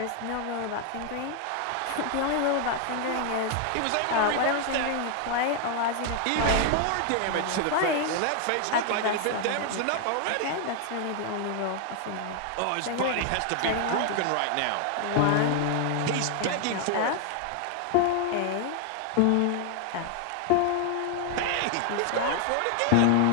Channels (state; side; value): different; both; correlation 0.00